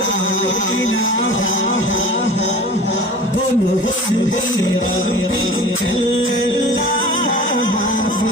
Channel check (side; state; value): both; normal; correlation 0.40